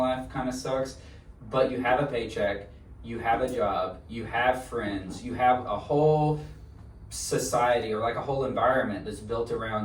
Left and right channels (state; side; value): identical; both; correlation 1.00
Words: kind of sucks, but you have a paycheck, you have a job, you have friends, you have a whole society or like a whole environment that's built